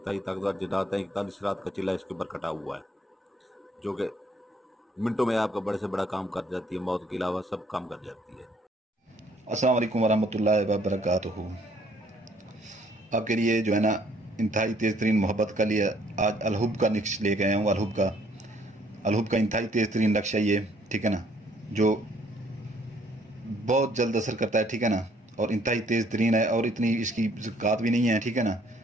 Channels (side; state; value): both; normal; correlation 0.64